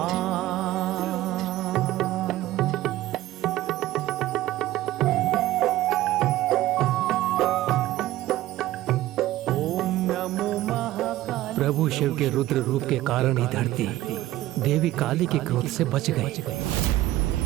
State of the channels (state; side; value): quieter; left; 15.5 dB